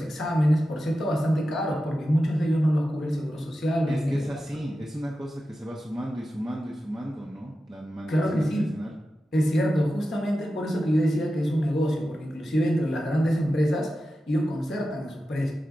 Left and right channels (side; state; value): both; normal; correlation 0.92